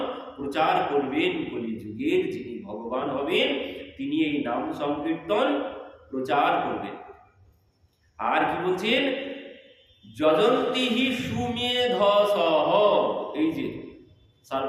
প্রচার করবেন কলিযুগের যিনি ভগবান হবেন, তিনি এই নাম সংকীর্তন প্রচার করবেন। আর কি বলছেন? যজন্তি হি সুমেধসহ। এই যে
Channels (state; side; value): identical; both; correlation 1.00